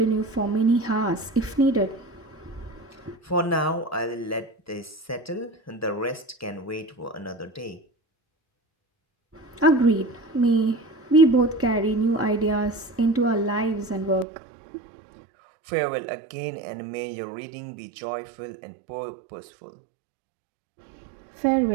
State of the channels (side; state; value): left; drops out; at 14.2 s